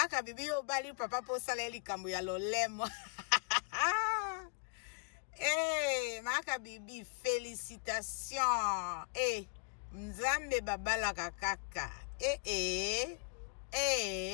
bibi yo bali papa po sala likambo ya lolemo. Maka bibi félicitations. Nzambe babala kakaka.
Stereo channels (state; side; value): quieter; right; 39.9 dB